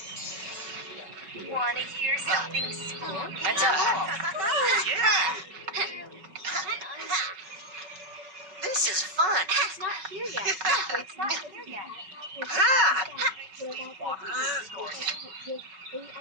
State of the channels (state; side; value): late; left; 5.3 ms